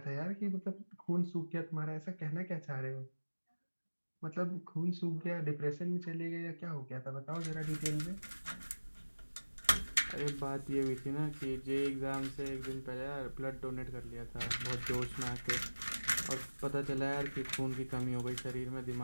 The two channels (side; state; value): both; inverted; correlation -1.00